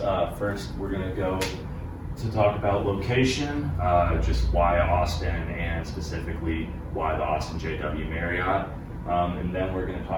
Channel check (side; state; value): both; identical; correlation 1.00